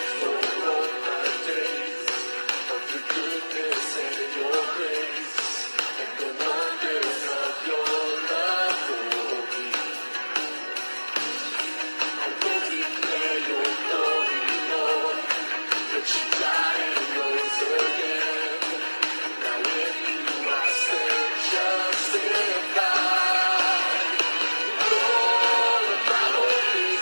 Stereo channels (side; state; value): both; inverted; correlation -1.00